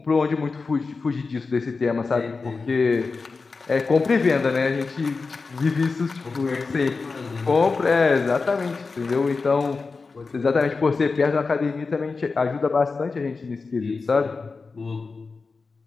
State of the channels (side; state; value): right; quieter; 4.3 dB